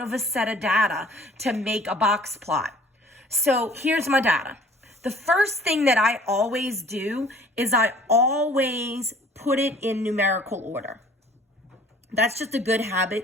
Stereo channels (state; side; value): normal; both; correlation 0.52